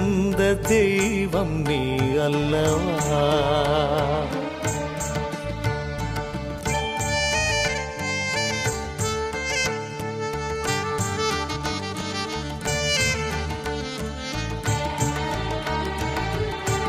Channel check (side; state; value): both; identical; correlation 1.00